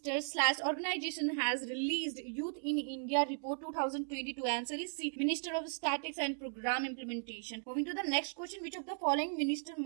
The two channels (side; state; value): left; silent; digital silence